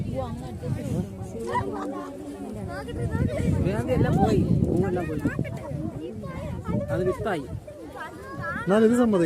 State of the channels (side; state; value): both; identical; correlation 1.00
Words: എല്ലാം പോയി, പൂവെല്ലാം പോയി. അത് വിത്തായി. ഞാൻ ഇത്